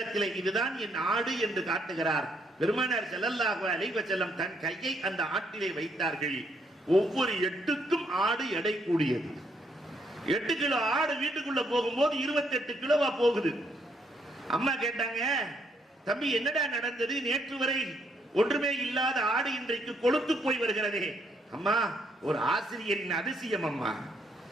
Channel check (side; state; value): both; normal; correlation 0.72